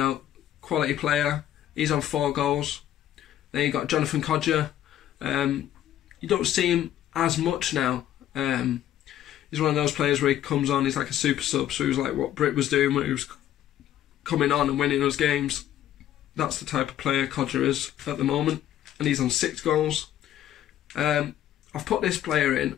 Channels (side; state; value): right; quieter; 11.8 dB